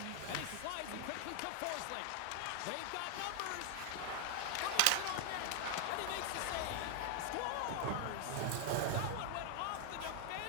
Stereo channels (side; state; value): both; different; correlation 0.00